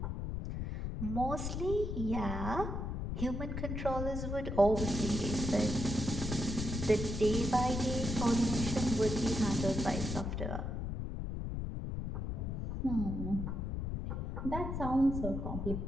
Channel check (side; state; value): left; noise; rumble, 3 dB below the sound